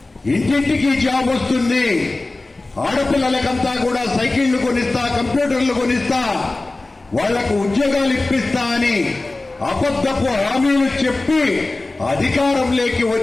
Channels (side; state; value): right; quieter; 3.1 dB